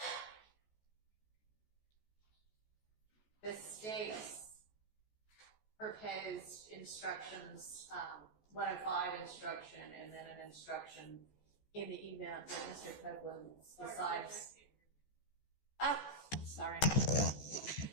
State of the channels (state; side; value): late; right; 14 ms